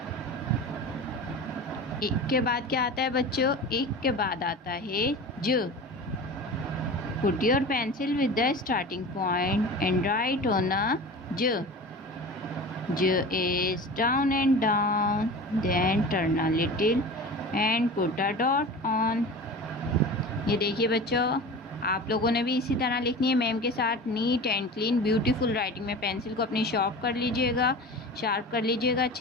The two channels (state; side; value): normal; both; correlation 0.34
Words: एक के बाद क्या आता है बच्चों? एक के बाद आता है ज। Put your pencil with the starting point and write on a j। J is down and down, then turn a little and put a dot on। ये देखिए बच्चों, आप लोगों ने भी इसी तरह लिखनी है मैम के साथ, neat and clean beautiful writing में। पेंसिल को अपनी शार्प कर लीजिएगा